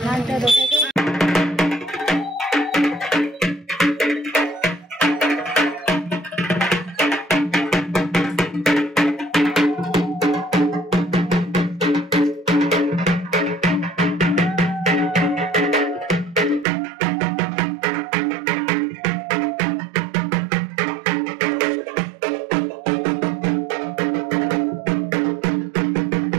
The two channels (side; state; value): left; drops out; at 16.7 s